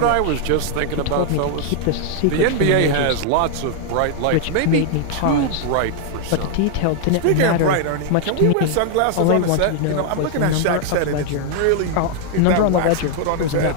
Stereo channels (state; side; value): different; both; correlation 0.00